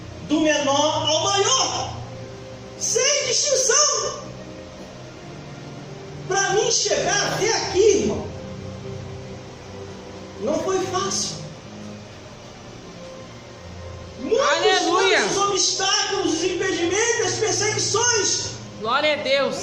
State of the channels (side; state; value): both; identical; correlation 1.00